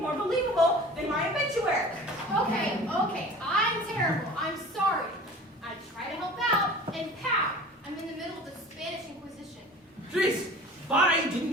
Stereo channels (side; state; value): both; normal; correlation 0.42